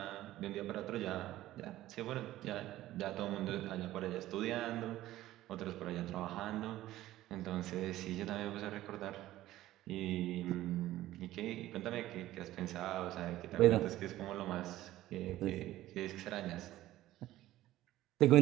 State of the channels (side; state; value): left; quieter; 15.1 dB